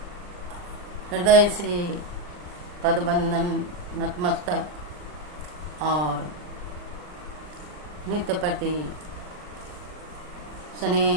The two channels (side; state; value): left; late; 39 ms